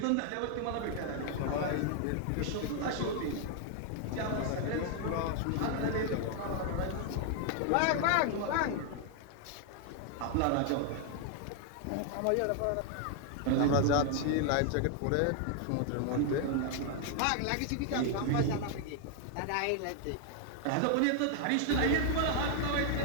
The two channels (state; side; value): different; both; correlation 0.00